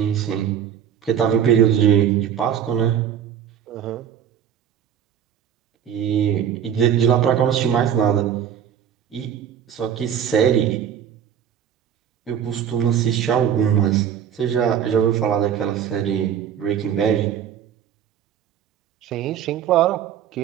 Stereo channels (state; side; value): quieter; left; 9.0 dB